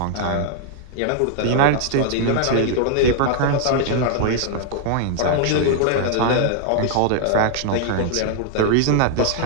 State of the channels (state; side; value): different; both; correlation -0.01